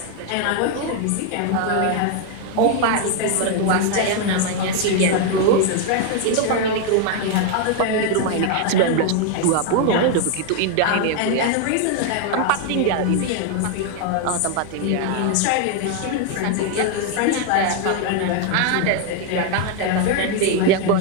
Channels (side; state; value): both; different; correlation 0.00